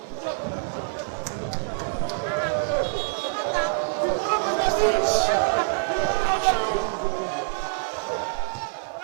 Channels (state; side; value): silent; left; 61 dB below the other